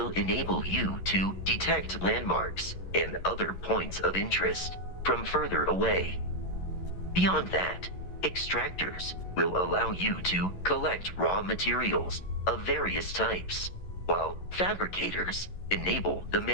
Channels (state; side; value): late; right; 11 ms